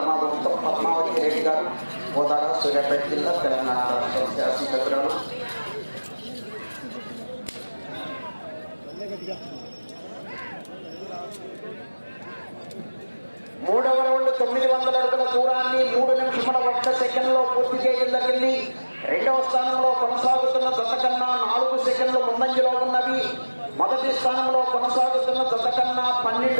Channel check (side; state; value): both; inverted; correlation -1.00